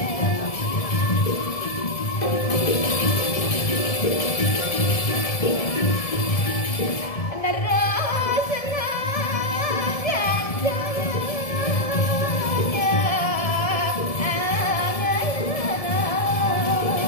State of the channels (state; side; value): late; right; 1.7 ms